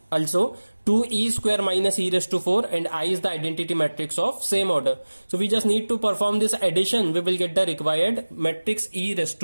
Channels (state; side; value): inverted; both; correlation -1.00